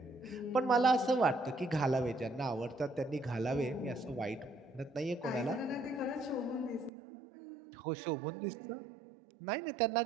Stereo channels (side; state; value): left; drops out; at 6.9 s